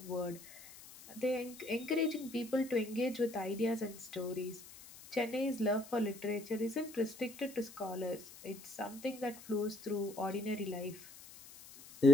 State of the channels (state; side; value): noise; left; hiss, 17 dB below the sound